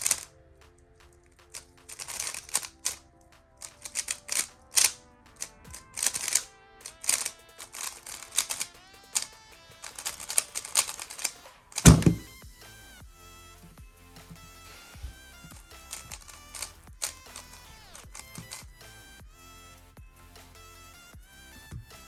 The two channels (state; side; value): identical; both; correlation 1.00